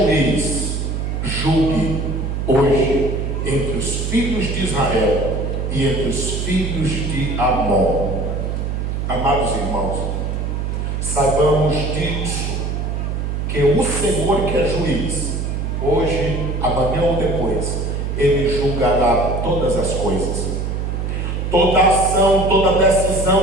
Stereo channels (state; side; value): noise; right; hum, 2 dB below the sound